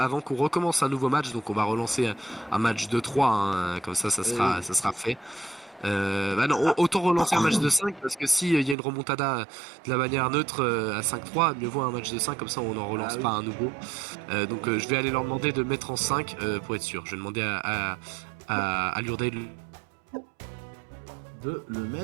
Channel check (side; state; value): left; drops out; at 8.8 s